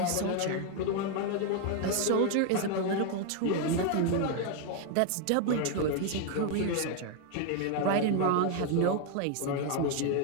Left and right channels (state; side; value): different; both; correlation 0.01